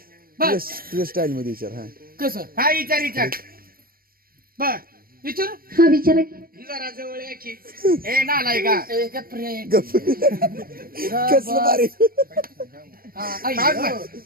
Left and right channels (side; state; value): left; late; 0.43 ms